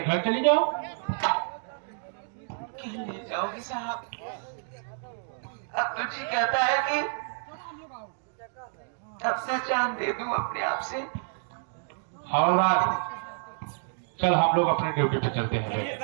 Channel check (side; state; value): left; silent; 59 dB below the other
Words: घर चली जाओ। क्यों ले जाओगी साहब? अब तो जी कहता है कि अपना जान दे दूं अपने आप से। हवलदार, चल हम लोग अपने ड्यूटी पे चलते हैं।